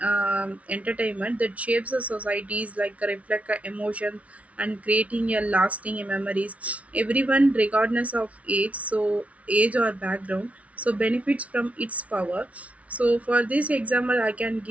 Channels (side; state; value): left; late; 0.066 ms